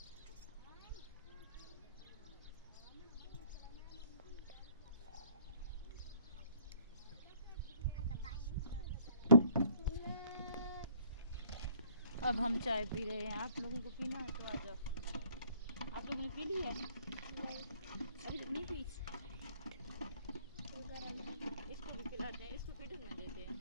अब हम चाय पी रहे हैं। आप लोगों को पीना है तो आ जाओ। आप लोगों ने पी ली है? अभी तक नहीं पी। इसको भी पिलाते हैं, इसको पीटन में देते हैं,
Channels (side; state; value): both; inverted; correlation -0.60